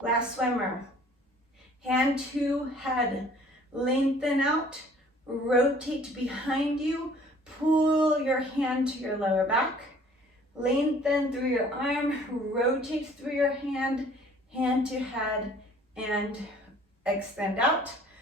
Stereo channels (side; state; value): both; normal; correlation 0.54